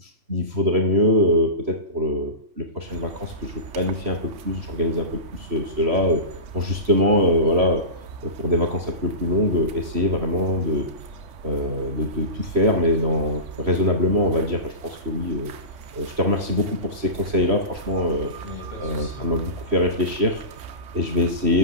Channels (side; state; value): left; late; 3.1 ms